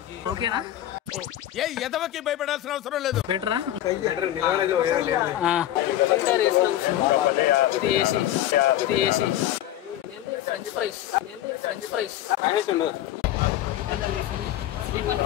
ఓకేనా? ఎదవకి భయపడాల్సిన అవసరం లేదు. బెటరా? ఇది ఏసీ, ఫ్రెంచ్ ఫ్రైస్,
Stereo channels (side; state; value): right; quieter; 12.9 dB